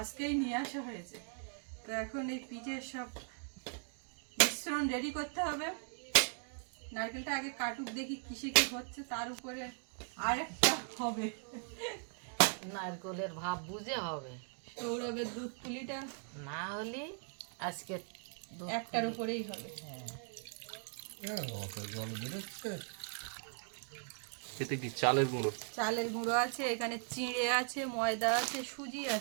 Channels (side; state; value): left; silent; 52 dB below the other